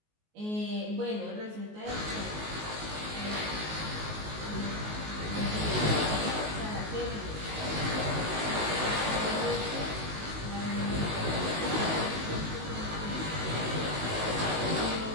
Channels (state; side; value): late; left; 19 ms